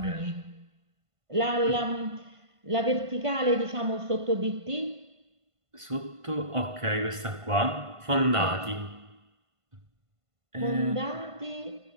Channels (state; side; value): late; left; 1.5 ms